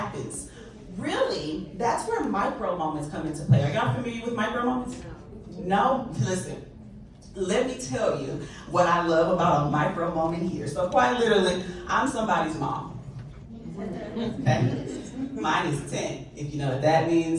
Really, that's where micro moments come into play. Are y'all familiar with micro moments? No? Listen, let me tell you what I love about a micro moment here. So quite literally, I'm somebody's mom. Okay? Mine is 10. If you know what that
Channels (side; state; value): both; identical; correlation 1.00